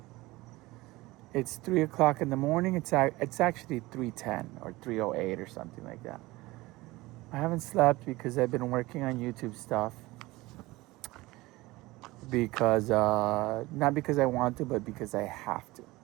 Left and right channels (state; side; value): quieter; left; 20.2 dB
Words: It's 3 o'clock in the morning. It's actually 3:10 or 3:08 or something like that. I haven't slept because I've been working on YouTube stuff. Because, not because I want to, but because I have to.